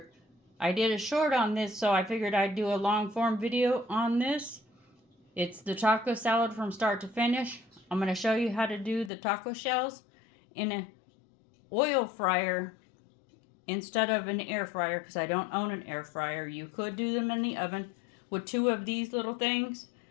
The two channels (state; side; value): drops out; right; at 9.1 s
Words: I did a short on this, so I figured I'd do a long form video on this. It's the taco salad from start to finish. I'm going to show you how to do the taco shells in an oil fryer instead of an air fryer, because I don't own an air fryer. You could do them in the oven with two of these little things.